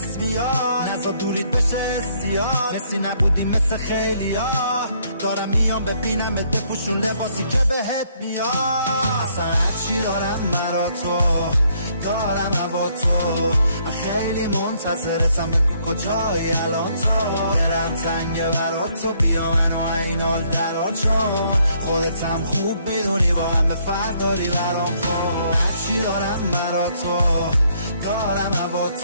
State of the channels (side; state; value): both; inverted; correlation -0.68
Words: میاد. نزا دورید بشه استیاد، مثلی نبودی مثل خیلی ها. دارم میام ببینم بپوشون لباسی که بهت میاد. اصلا هرچی دارم مرا تو دارم هوا تو. من خیلی منتظرتم بگو کجایی الان تو. برم زنگ برا تو بیا منو این حال درا، چون خودتم خوب میدونی با همه فرق داری برام. خب هرچی دارم مرا تو دارم هوا